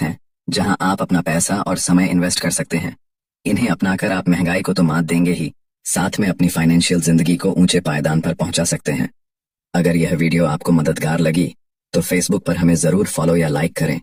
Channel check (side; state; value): both; identical; correlation 1.00